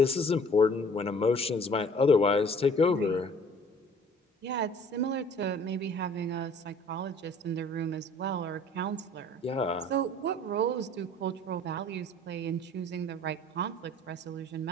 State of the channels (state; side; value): normal; both; correlation 0.52